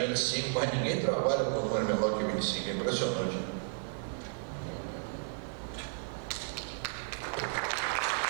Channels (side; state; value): left; silent; digital silence